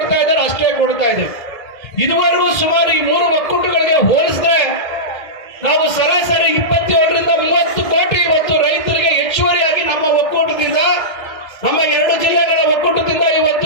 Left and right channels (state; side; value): late; right; 2.1 ms